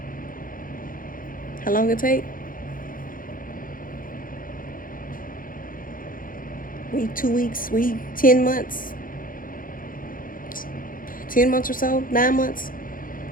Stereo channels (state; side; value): late; right; 0.40 ms